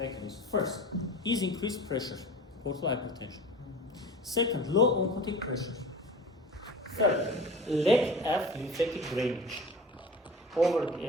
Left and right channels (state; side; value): normal; both; correlation 0.37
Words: First is increased pressure, portal hypertension. Second, low oncotic pressure. Third, lack of lymphatic drainage.